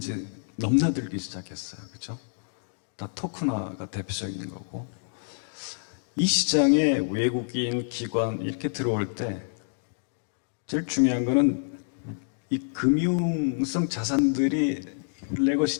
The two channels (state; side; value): silent; right; digital silence